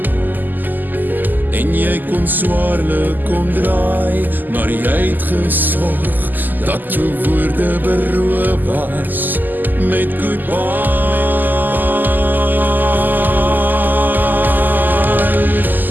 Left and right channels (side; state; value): left; late; 0.087 ms